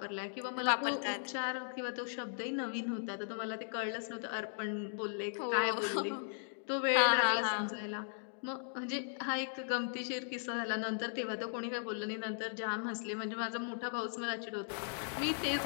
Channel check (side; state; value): right; silent; digital silence